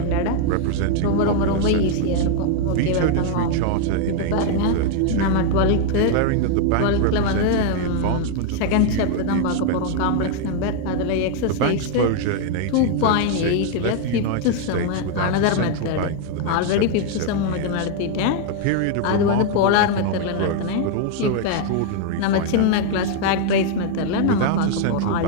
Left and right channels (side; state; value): both; different; correlation 0.00